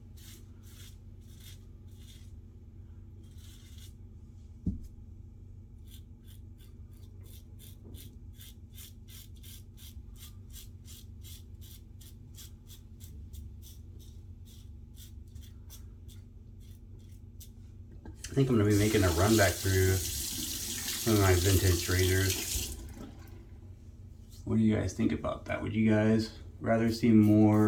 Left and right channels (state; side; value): identical; both; correlation 1.00